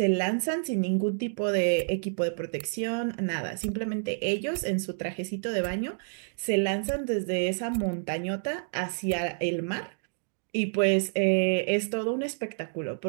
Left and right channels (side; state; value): left; silent; digital silence